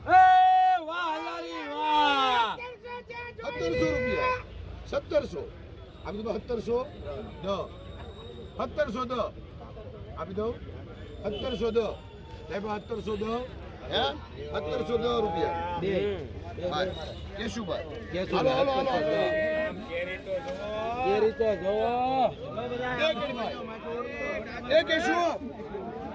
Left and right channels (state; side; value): identical; both; correlation 1.00